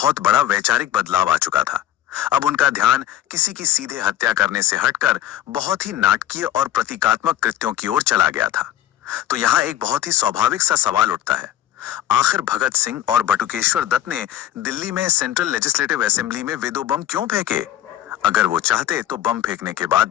बड़ा वैचारिक बदलाव आ चुका था। अब उनका ध्यान किसी की सीधे हत्या करने से हटकर बहुत ही नाटकीय और प्रतीकात्मक कृत्यों की ओर चला गया था। तो यहाँ एक बहुत ही स्वाभाविक सा सवाल उठता है, आखिर भगत सिंह और बटुकेश्वर दत्त ने दिल्ली में सेंट्रल लेजिस्लेटिव असेंबली में वे दो बम क्यों फेंके? अगर वो चाहते तो बम फेंकने के बाद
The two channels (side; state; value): right; quieter; 12.3 dB